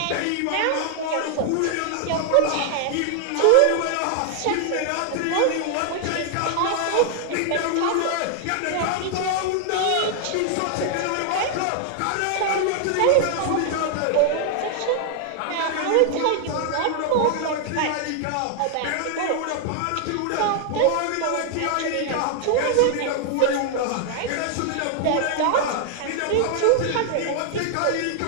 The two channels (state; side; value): different; both; correlation 0.00